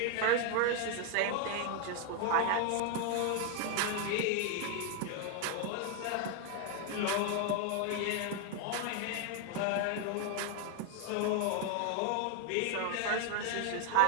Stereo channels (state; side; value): different; both; correlation 0.01